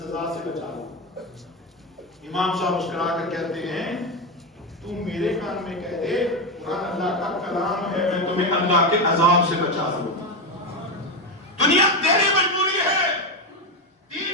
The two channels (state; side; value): normal; both; correlation 0.12